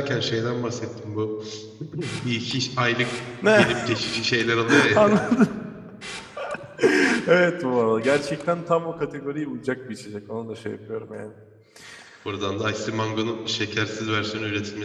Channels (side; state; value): both; identical; correlation 1.00